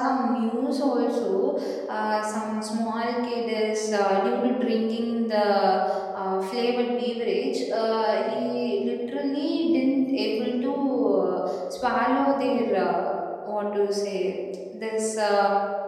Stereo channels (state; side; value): identical; both; correlation 1.00